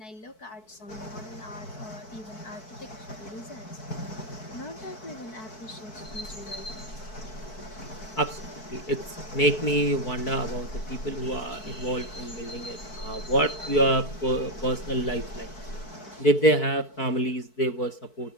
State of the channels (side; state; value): right; late; 4.6 ms